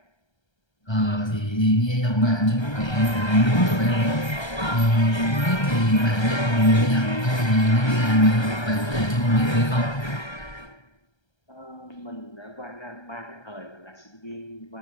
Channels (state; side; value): late; right; 1.3 ms